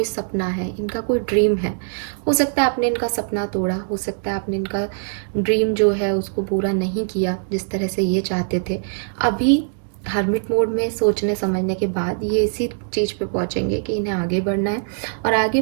सपना है, इनका कोई ड्रीम है। हो सकता है आपने इनका सपना तोड़ा, हो सकता है आपने इनका ड्रीम जो है उसको पूरा नहीं किया जिस तरह से ये चाहते थे। अभी हर्मिट मोड में सोचने समझने के बाद ये इसी चीज़ पे पहुंचेंगे कि इन्हें आगे बढ़ना है, और आगे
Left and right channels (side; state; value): left; silent; digital silence